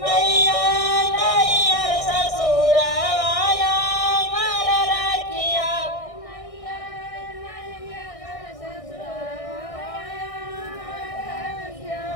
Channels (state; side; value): late; right; 1.6 ms